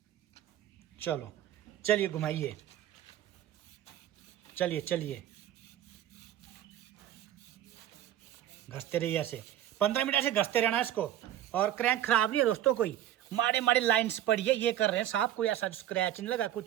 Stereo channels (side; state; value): left; quieter; 12.1 dB